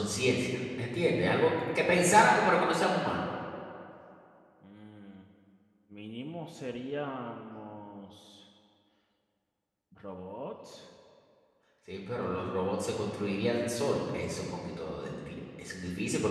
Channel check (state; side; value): identical; both; correlation 1.00